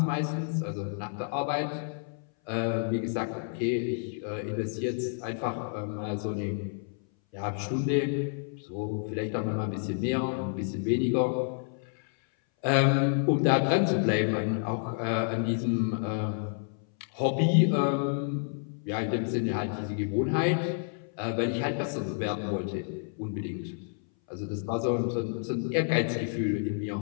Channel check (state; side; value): silent; right; 58 dB below the other